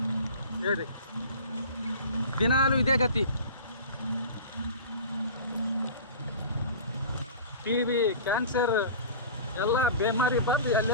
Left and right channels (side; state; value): both; inverted; correlation -0.38